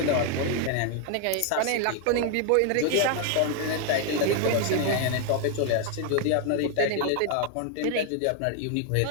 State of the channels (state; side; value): different; both; correlation 0.00